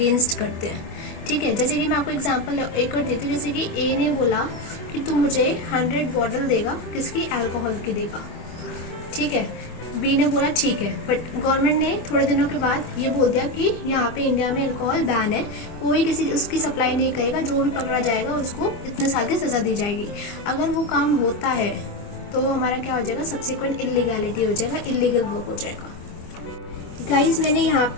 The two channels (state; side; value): late; right; 24 ms